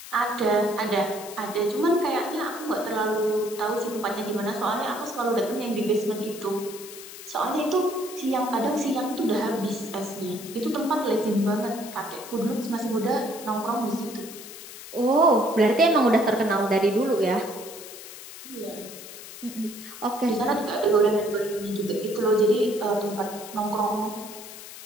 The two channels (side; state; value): left; noise; hiss, 14 dB below the sound